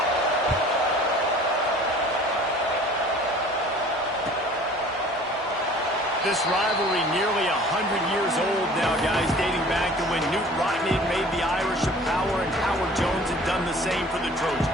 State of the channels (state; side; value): normal; both; correlation 0.48